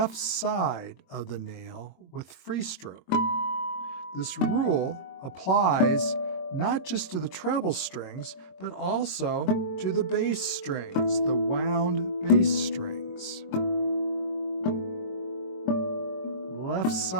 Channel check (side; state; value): right; late; 22 ms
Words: side of the nail with free stroke. This rule applies not just to the treble strings, but also to the bass strings, the wound bass strings. Left